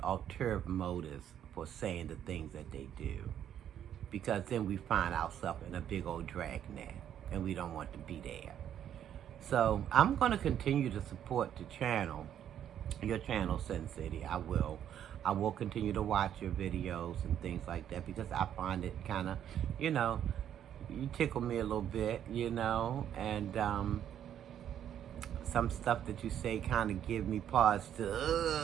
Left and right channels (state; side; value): quieter; left; 10.0 dB